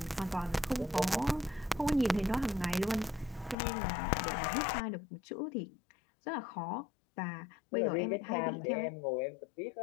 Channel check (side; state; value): right; drops out; at 3.6 s